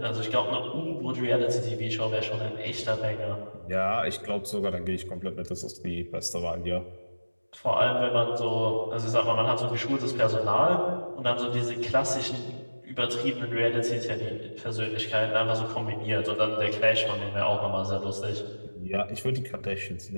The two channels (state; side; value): inverted; both; correlation -1.00